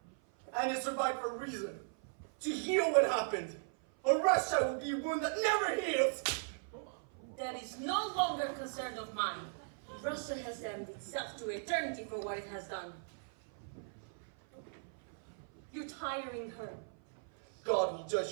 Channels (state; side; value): silent; left; 53 dB below the other